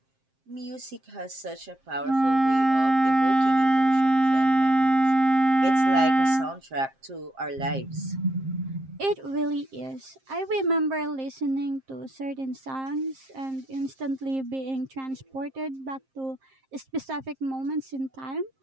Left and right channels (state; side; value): late; left; 7.6 ms